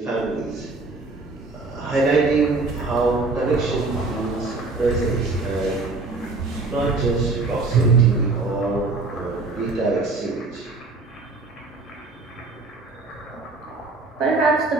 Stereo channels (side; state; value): left; quieter; 3.6 dB